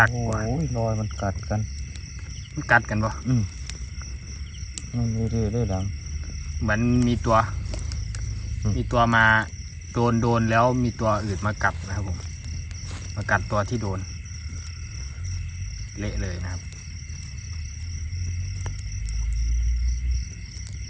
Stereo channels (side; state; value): both; identical; correlation 1.00